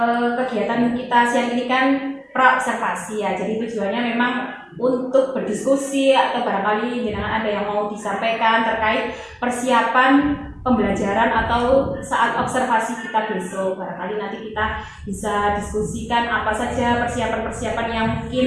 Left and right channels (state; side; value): identical; both; correlation 1.00